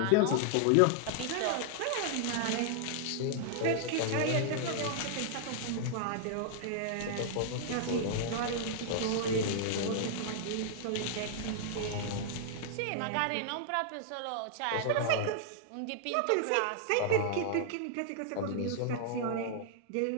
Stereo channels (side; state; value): both; different; correlation -0.01